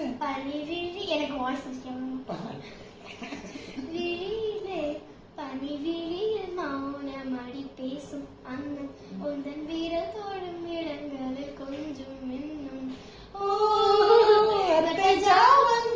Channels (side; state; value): both; identical; correlation 1.00